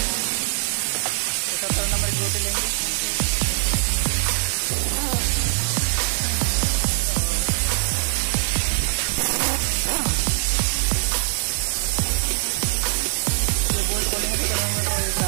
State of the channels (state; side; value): silent; left; digital silence